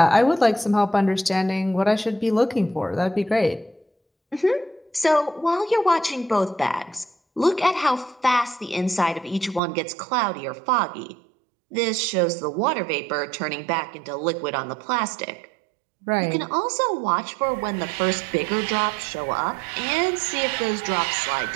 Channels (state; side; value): drops out; left; at 9.6 s